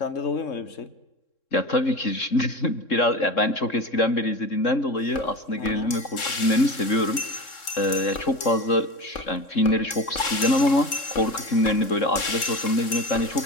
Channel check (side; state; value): right; late; 3.7 ms